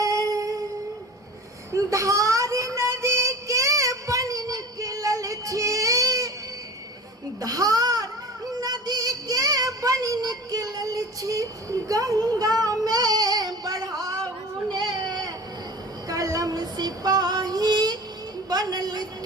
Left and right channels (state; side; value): normal; both; correlation 0.38